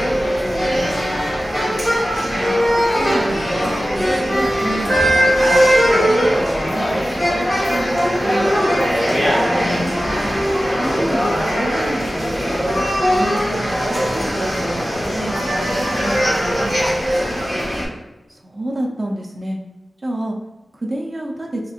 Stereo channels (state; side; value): normal; both; correlation 0.95